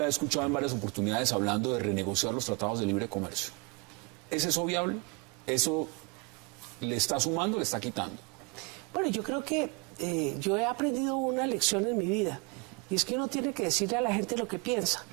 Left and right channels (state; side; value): quieter; left; 29.6 dB